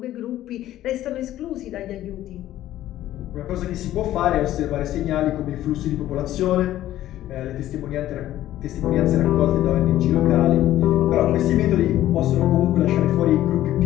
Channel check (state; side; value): quieter; right; 13.6 dB